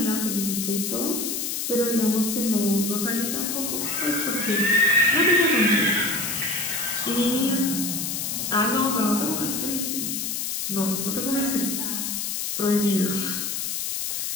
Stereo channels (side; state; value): left; noise; hiss, 2 dB below the sound